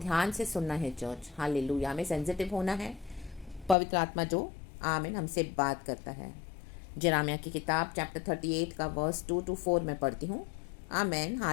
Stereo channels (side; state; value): right; drops out; at 3.8 s